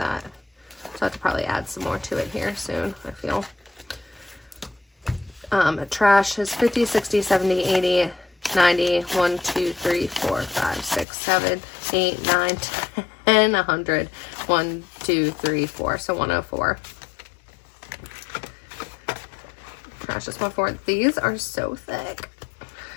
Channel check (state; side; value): drops out; right; at 11.1 s